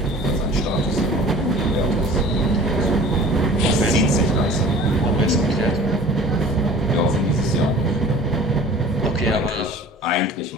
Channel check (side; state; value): both; normal; correlation 0.45